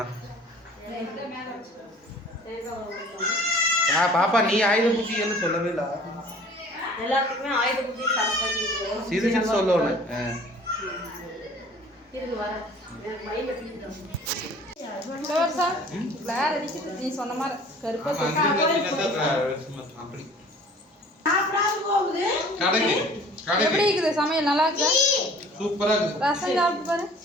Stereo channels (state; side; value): normal; both; correlation 0.49